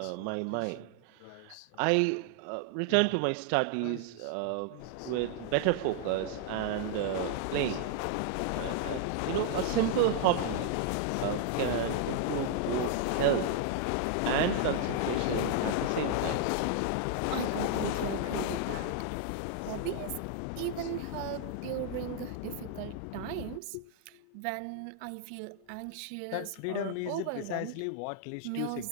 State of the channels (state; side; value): different; both; correlation -0.01